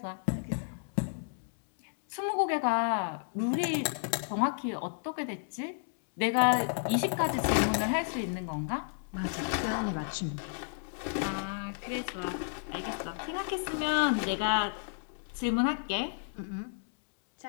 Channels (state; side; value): silent; right; digital silence